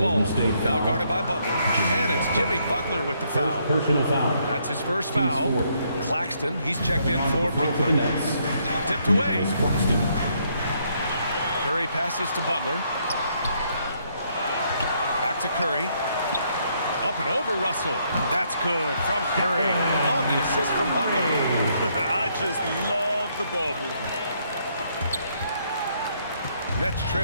Now guarded by Butler. And it's Jimmy Butler with the foul. Personal foul. That's his first foul. Claxton, he's checked in for Brooklyn. Tipped away. Curry passes to Butler. Back to Curry. Up and over Russell. That's good from Curry. On the assist from Butler. I just love the ball movement. Nets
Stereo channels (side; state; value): both; inverted; correlation -0.72